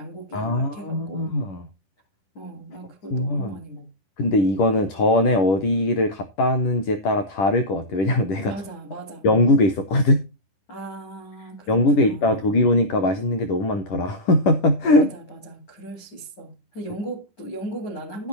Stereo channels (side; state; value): right; late; 10 ms